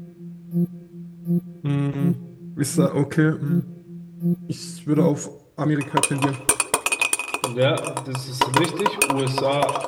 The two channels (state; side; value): identical; both; correlation 1.00